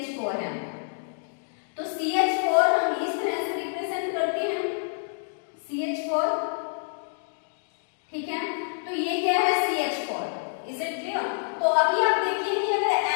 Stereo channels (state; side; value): silent; right; digital silence